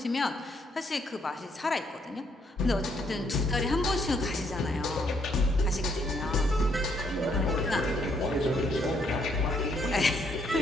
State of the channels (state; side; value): normal; both; correlation 0.71